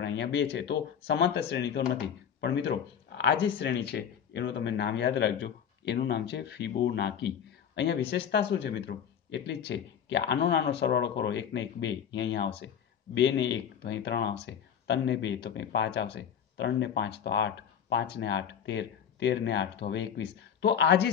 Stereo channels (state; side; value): quieter; right; 8.3 dB